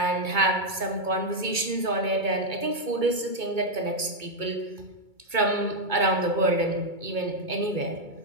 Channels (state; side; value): late; left; 2.2 ms